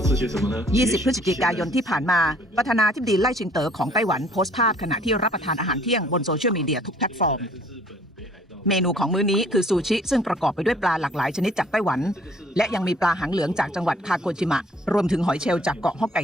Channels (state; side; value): normal; both; correlation 0.58